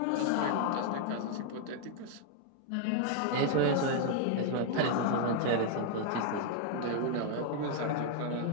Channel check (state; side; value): different; both; correlation 0.00